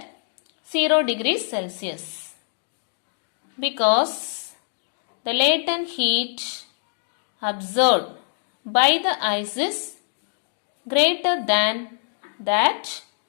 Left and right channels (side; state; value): right; silent; digital silence